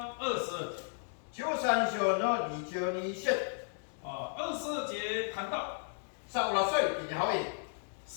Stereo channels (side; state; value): right; silent; digital silence